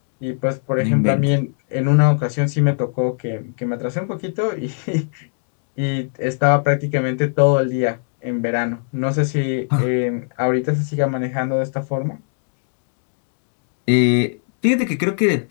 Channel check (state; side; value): silent; right; digital silence